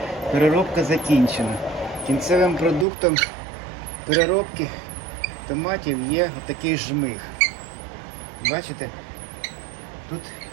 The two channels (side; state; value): left; drops out; at 2.9 s